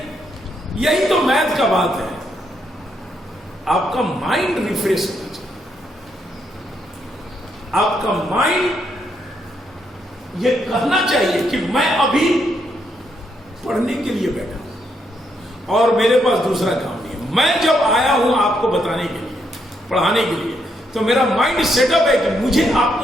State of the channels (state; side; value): normal; both; correlation 0.77